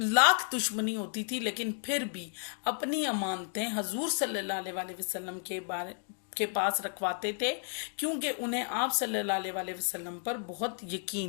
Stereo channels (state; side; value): silent; right; 56 dB below the other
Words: دشمنی ہوتی تھی لیکن پھر بھی اپنی امانتیں حضور صلی اللہ علیہ وسلم کے پاس رکھواتے تھے، کیونکہ انہیں آپ صلی اللہ علیہ وسلم پر بہت